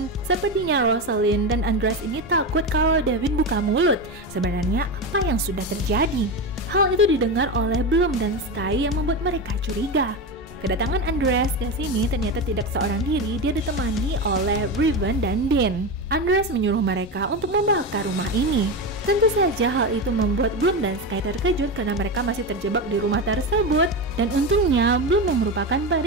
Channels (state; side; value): normal; both; correlation 0.18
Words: sepertinya Rosalind dan Andreas ini takut kalau Devin buka mulut. Sebenarnya apa yang sudah terjadi? Hal itu didengar oleh Bloom dan Sky yang membuat mereka curiga. Kedatangan Andreas ke sini ternyata tidak seorang diri, dia ditemani oleh Riven dan Dean. Andreas menyuruh mereka untuk membakar rumah ini. Tentu saja hal itu membuat Bloom dan Sky terkejut karena mereka masih terjebak di rumah tersebut. Dan untungnya Bloom yang merupakan